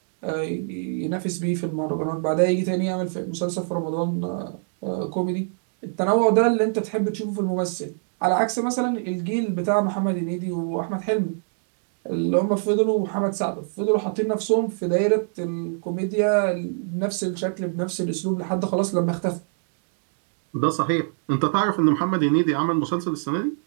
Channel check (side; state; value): left; silent; digital silence